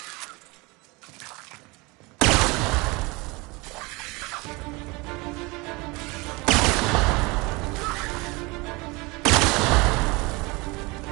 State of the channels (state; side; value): quieter; left; 25.3 dB